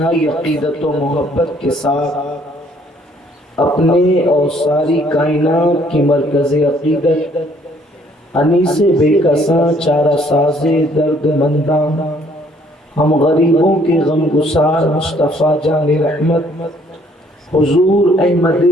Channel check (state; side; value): normal; both; correlation 0.63